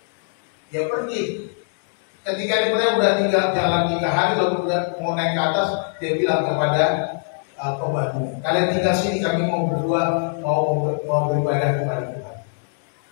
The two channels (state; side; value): silent; right; digital silence